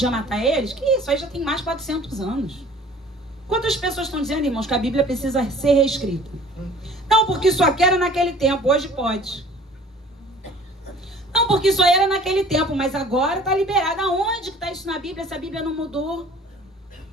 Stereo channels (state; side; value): normal; both; correlation 0.49